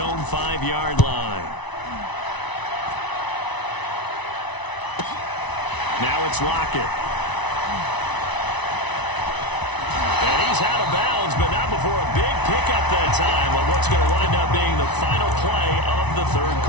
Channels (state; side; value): late; right; 1.0 ms